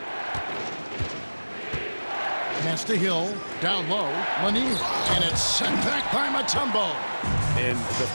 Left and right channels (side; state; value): both; inverted; correlation -1.00